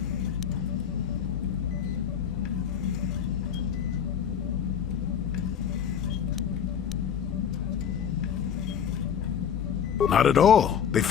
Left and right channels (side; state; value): right; quieter; 8.1 dB